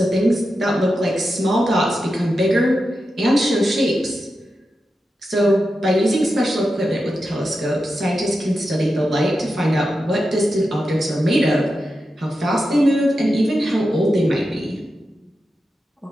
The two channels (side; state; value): both; normal; correlation 0.89